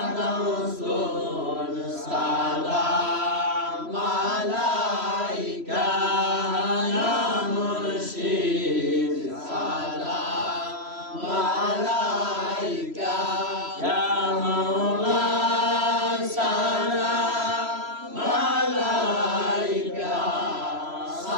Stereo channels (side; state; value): left; late; 3.0 ms